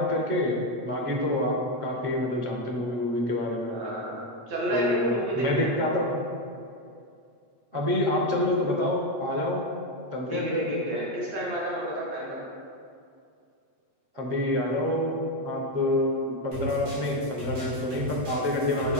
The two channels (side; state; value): left; late; 8.2 ms